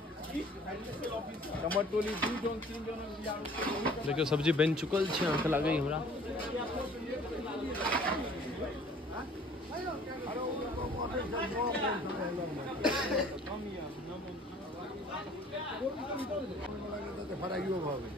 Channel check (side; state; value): both; normal; correlation 0.52